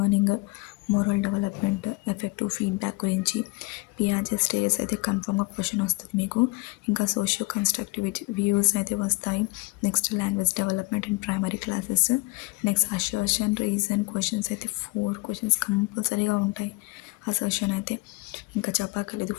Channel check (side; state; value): right; quieter; 25.9 dB